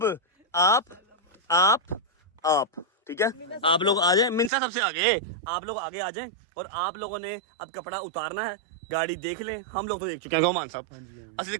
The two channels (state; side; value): drops out; left; at 4.5 s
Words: आप ठीक है, आप लोग आ जाए, मिनसा सबसे आगे, आप लोग आगे आ जाएं, और आप लोगों ने अब कपड़ा उतारना है, गाड़ी देख लें, हम लोग तो देख चुके हैं मान साहब, असली